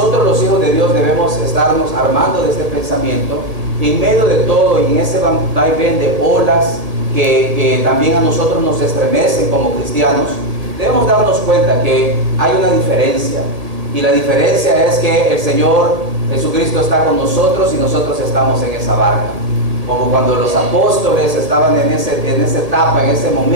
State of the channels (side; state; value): left; late; 1.7 ms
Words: los hijos de Dios, debemos estarnos armando de este pensamiento en medio de todo, y en ese vaivén de olas que también a nosotros nos estremecen como cristianos. Debemos darnos cuenta que hay una diferencia, y la diferencia es que el Señor Jesucristo está con nosotros y nosotros estamos en esa barca. Como cuando los apóstoles estaban en esa etapa, en ese